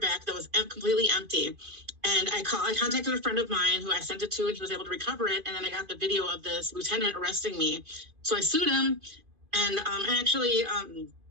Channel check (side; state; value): left; late; 2.5 ms